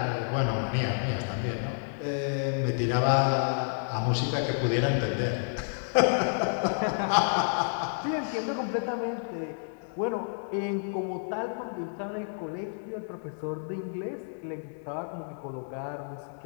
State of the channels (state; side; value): silent; right; digital silence